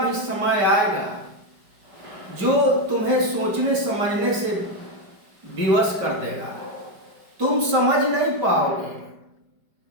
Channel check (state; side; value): late; left; 5.1 ms